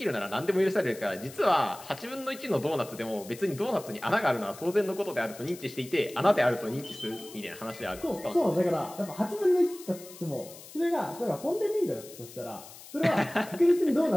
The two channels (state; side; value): noise; left; hiss, 17 dB below the sound